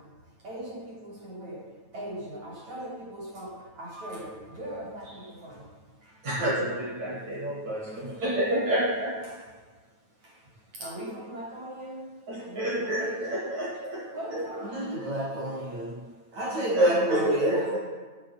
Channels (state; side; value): late; left; 9.1 ms